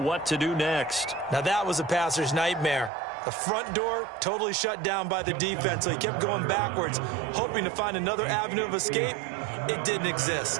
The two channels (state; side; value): drops out; left; at 2.9 s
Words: to do next. Now that was a passer's nightmare. The front door totally shut down by the defense, so he kept going backwards, hoping to find another avenue of escape. It didn't